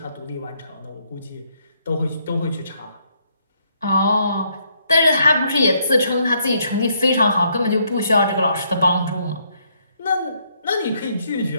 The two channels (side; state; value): both; inverted; correlation -0.72